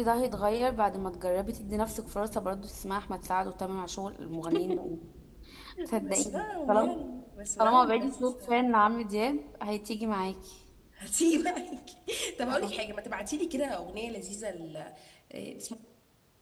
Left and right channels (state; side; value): identical; both; correlation 1.00